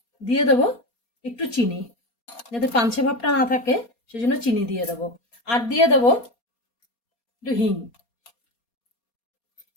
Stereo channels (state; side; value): late; right; 4.3 ms